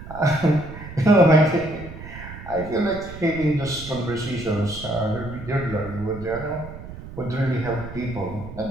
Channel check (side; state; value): right; noise; rumble, 13 dB below the sound